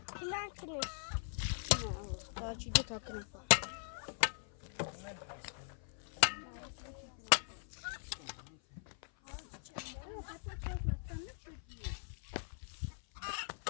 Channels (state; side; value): silent; right; 51 dB below the other